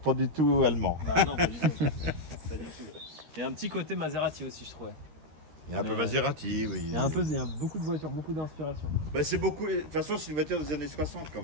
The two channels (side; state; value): left; late; 13 ms